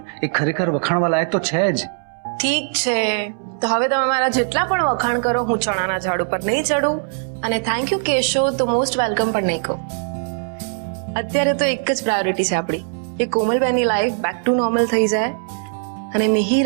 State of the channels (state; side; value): silent; left; 65 dB below the other